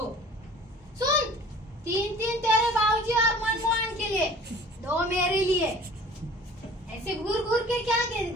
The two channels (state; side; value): normal; both; correlation 0.47